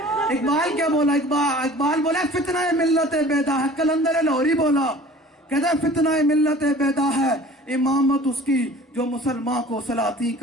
اقبال کیا بولا؟ اقبال بولا فتنہ ملت بیدا ہے. کلندر لاہوری بولا کہتا ہے فتنہ ملت بیدا ہے، امامت اس کی جو مسلمان کو سلاطین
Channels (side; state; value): both; normal; correlation 0.46